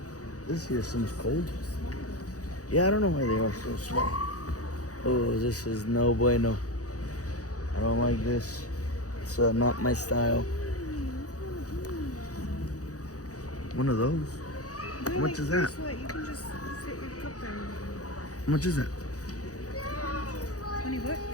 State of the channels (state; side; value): late; right; 0.66 ms